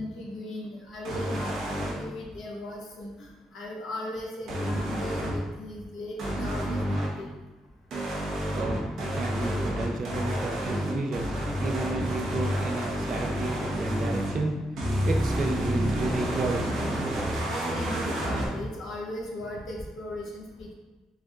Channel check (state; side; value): normal; both; correlation 0.82